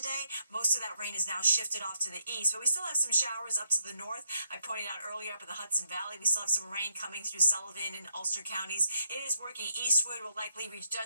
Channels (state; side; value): inverted; both; correlation -0.76